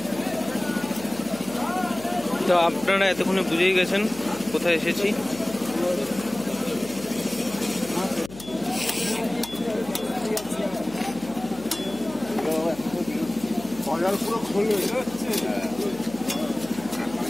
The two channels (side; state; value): left; noise; hum, 17 dB below the sound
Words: তো আপনারা এতক্ষণে বুঝেই গেছেন কোথায় এসেছি।